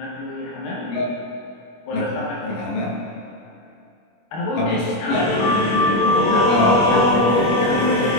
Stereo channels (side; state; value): right; late; 25 ms